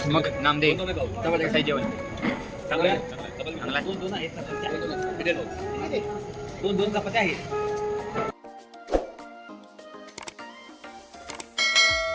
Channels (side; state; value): both; identical; correlation 1.00